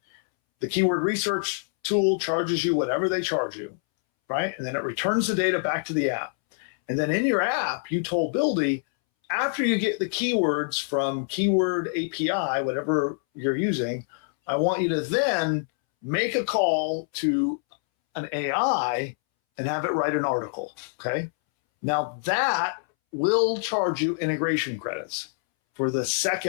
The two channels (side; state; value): right; silent; 61 dB below the other